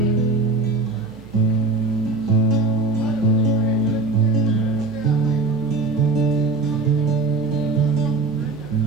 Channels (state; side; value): quieter; left; 3.5 dB